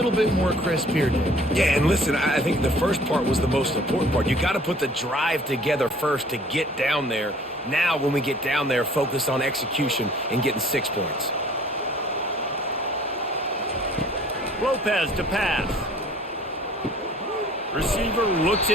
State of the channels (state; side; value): normal; both; correlation 0.53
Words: bit more crisp here, Dave. Yeah, and listen, I think the first part was the most important part. You got to put the drive together first to get down there. Now, when we get down there, focus on execution and getting 6 points. Lopez to pass. Receiver looks